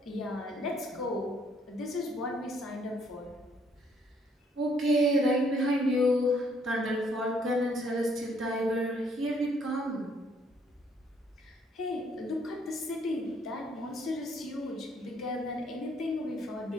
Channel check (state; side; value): normal; both; correlation 0.67